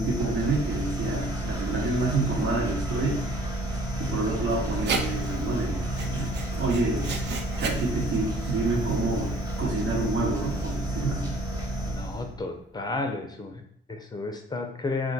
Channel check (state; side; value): normal; both; correlation 0.55